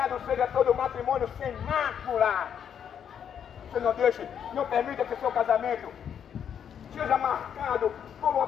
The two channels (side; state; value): right; quieter; 8.4 dB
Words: seja todo matrimônio sem mácula. Você não deixe, não permita que o seu casamento seja marcado por uma